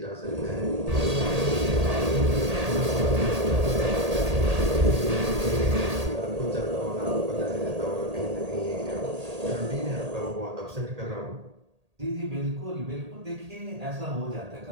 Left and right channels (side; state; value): left; late; 1.8 ms